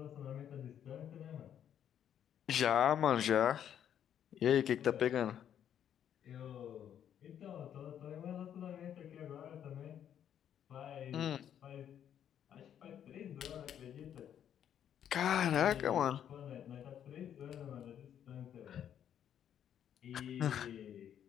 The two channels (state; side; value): quieter; right; 9.6 dB